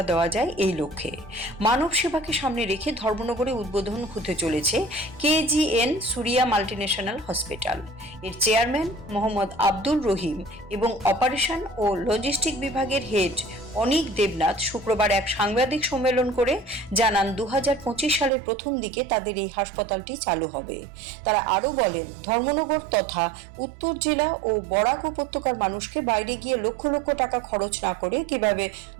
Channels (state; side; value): drops out; left; at 18.3 s